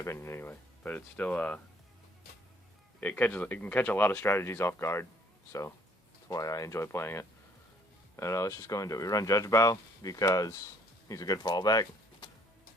anyway. But it's still, it can catch a lot of strategies off guard, so that's why I enjoy playing it. And let's just go into it. We run Judge Bow because he's a good fallback.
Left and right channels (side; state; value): both; normal; correlation 0.61